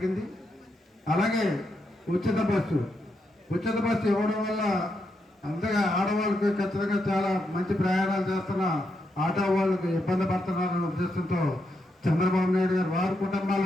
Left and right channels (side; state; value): both; normal; correlation 0.82